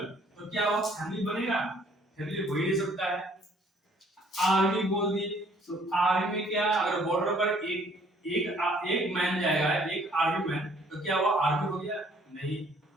तो क्या वो फैमिली बनेगा, फैमिली हो ही नहीं सकता है। आर्मी बोल दिए तो आर्मी में क्या, अगर बॉर्डर पर एक मैन जाएगा, एक आर्मी मैन, तो क्या वो आर्मी हो गया, नहीं।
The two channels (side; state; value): both; normal; correlation 0.60